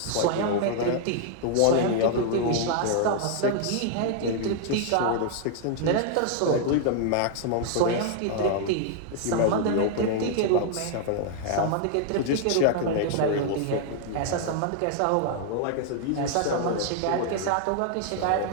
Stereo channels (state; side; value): different; both; correlation 0.00